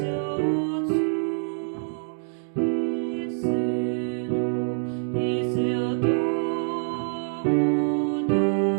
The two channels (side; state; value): left; silent; digital silence